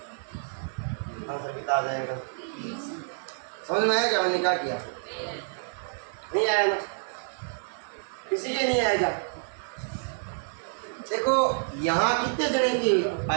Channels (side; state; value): left; silent; 58 dB below the other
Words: आंसर कितना आ जाएगा। समझ में आया क्या मैंने क्या किया, नहीं आया ना, किसी के नहीं आएगा। देखो यहाँ कितने जने की